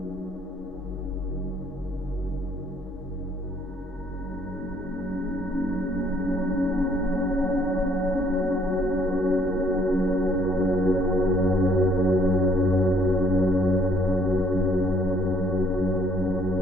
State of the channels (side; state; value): both; normal; correlation 0.63